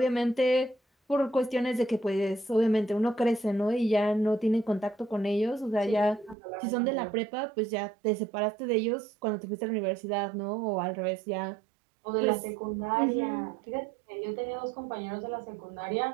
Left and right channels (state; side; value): drops out; left; at 6.4 s